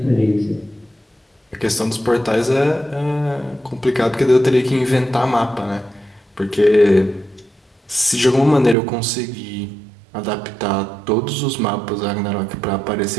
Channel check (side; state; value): left; drops out; at 8.8 s